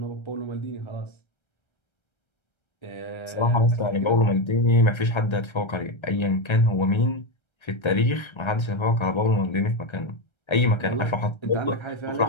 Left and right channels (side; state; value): right; late; 1.3 ms